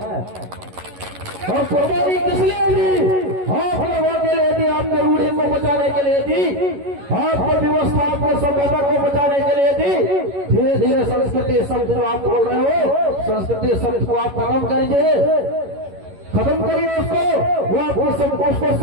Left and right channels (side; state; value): left; late; 11 ms